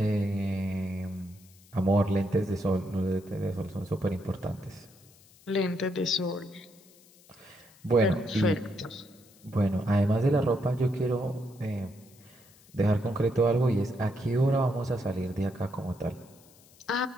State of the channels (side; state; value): left; noise; hiss, 27 dB below the sound